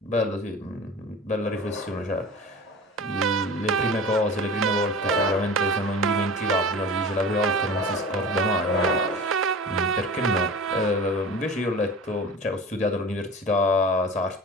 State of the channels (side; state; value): both; normal; correlation 0.36